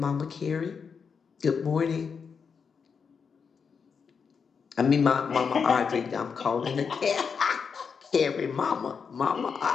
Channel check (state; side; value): quieter; right; 6.0 dB